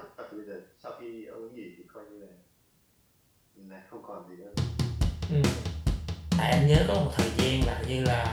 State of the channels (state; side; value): identical; both; correlation 1.00